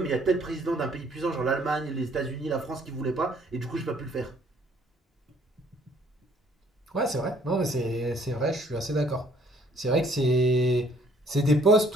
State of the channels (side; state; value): both; normal; correlation 0.61